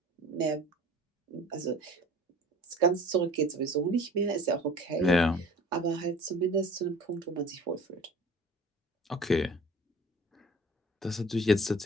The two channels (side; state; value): both; normal; correlation 0.45